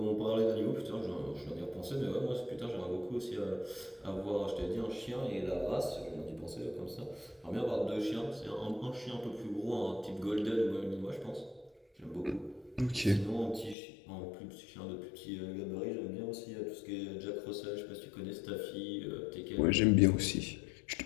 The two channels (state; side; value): drops out; right; at 13.8 s